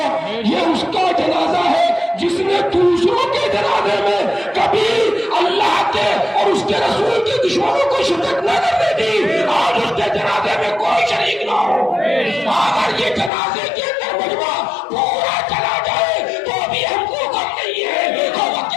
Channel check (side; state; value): right; drops out; at 13.3 s